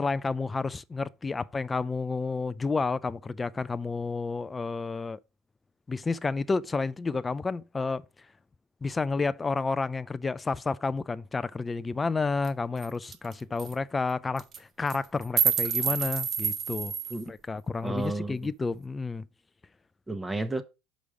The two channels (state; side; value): normal; both; correlation 0.85